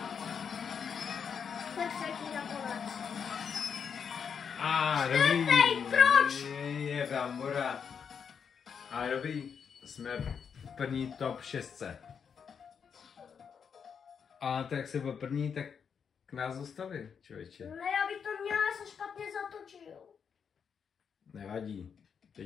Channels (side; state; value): right; quieter; 6.8 dB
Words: Tak třetí nakonec. Dobrý. Čtvrtý, proč? Je brambora. Ale dobrý, jsme v první top 6. A tak jak se byl první, tak k nás dostavil, člověče. Ne, já bych to měla, já jsem špatně zatočil. Nevadí,